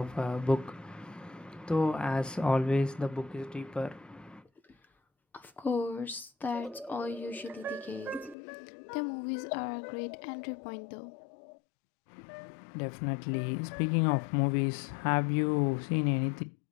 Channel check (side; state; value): right; drops out; at 8.3 s